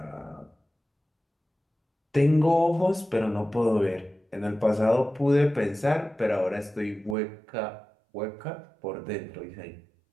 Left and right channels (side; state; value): left; drops out; at 7.2 s